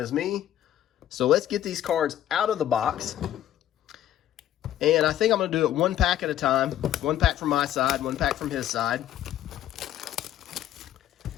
me. So let's get these cards out of the box. And I think I'm going to do it 1 pack at a time. 1 pack from my side, 1 pack from his side.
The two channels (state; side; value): quieter; right; 11.9 dB